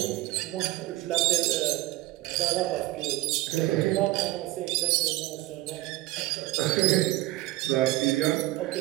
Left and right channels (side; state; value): left; quieter; 18.1 dB